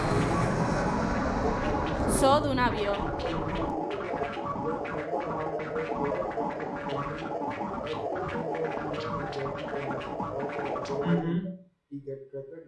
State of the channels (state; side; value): identical; both; correlation 1.00